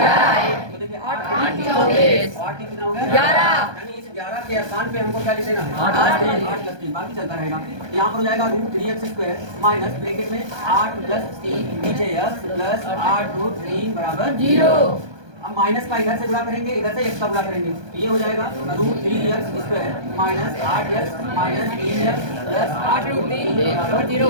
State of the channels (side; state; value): left; late; 1.2 ms